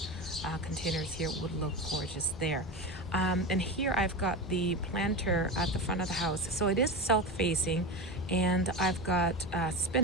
containers here would look gorgeous there. And here I've got the planter at the front of the house. So it is south facing, and I've got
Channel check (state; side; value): normal; both; correlation 0.22